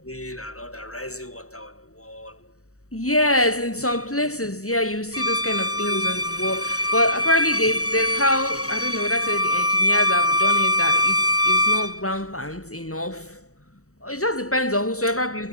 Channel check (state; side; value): late; right; 0.65 ms